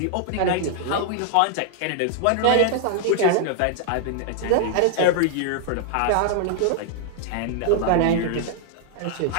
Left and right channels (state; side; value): different; both; correlation -0.01